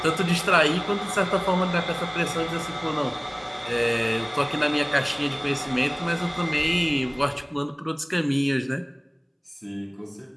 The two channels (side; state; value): both; identical; correlation 1.00